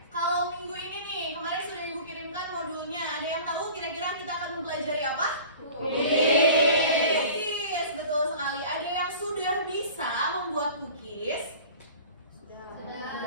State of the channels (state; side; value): inverted; both; correlation -0.42